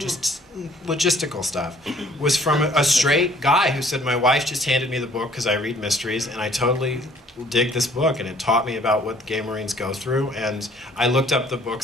logistical stuff, was from a straight guy who said, my wife just handed me the book because I read mysteries, and I totally dig this book, and it taught me about what gay Marines go through. And I looked up the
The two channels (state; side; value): normal; both; correlation 0.58